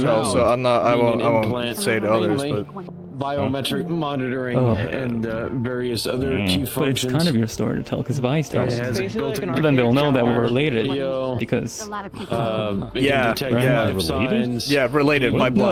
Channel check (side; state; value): both; identical; correlation 1.00